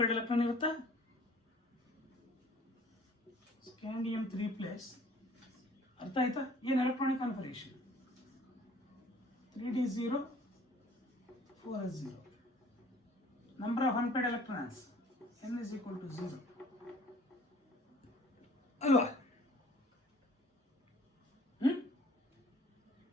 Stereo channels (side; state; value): both; normal; correlation 0.53